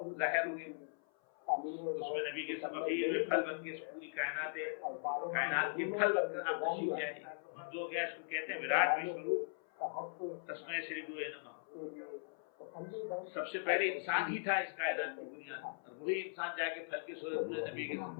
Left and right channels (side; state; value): right; silent; 52 dB below the other